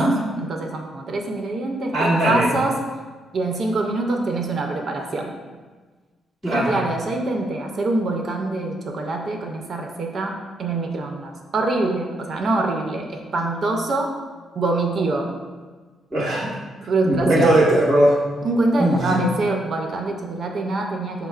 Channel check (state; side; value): normal; both; correlation 0.77